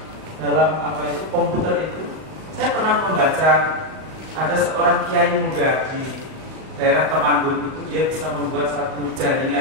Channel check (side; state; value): left; late; 38 ms